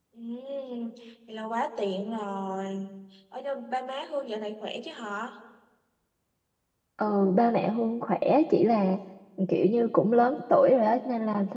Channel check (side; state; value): both; identical; correlation 1.00